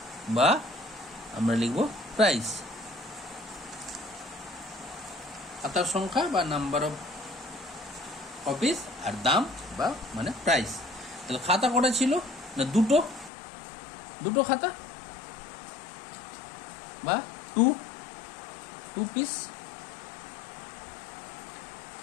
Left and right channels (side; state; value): right; drops out; at 13.3 s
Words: বা আমরা লিখব প্রাইস। খাতার সংখ্যা বা নাম্বার অফ কপিস আর দাম বা মানে প্রাইস। তাহলে খাতা কটা ছিল না? দুটো খাতা বা টু পিস।